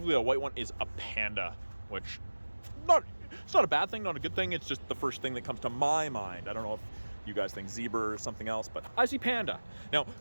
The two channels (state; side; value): inverted; both; correlation -1.00